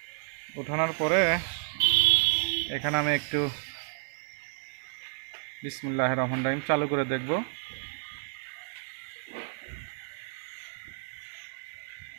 উঠানোর পরে এখানে আমি একটু বিসমিল্লাহির রহমানির রহিম চালু করে দেখব।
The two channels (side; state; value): left; silent; 57 dB below the other